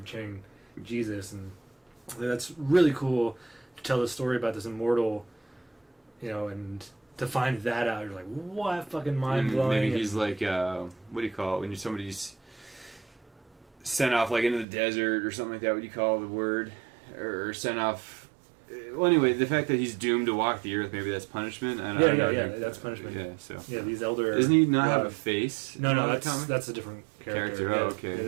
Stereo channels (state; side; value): drops out; left; at 14.7 s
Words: Jesus. And that's really cool to tell the story about this immortal, you know, and to find that out, you're like, what? Fucking mind-blowing. Maybe he's like, what do you call it? When somebody's sent off, like, into the desert or something like that, what do you call the word? Or sent off Well, anyway, the fact that he's doomed to walk the earth, maybe that's punishment. I don't know. That's punishment. Yeah, so these elder. Doesn't he not have a face? No, that's a different character. Oh, okay. Yeah,